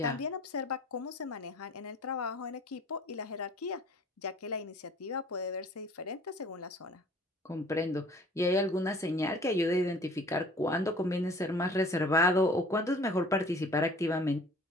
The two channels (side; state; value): both; normal; correlation 0.50